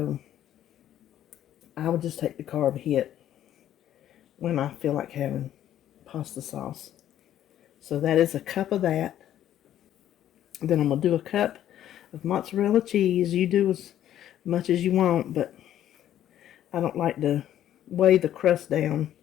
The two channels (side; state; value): right; quieter; 11.6 dB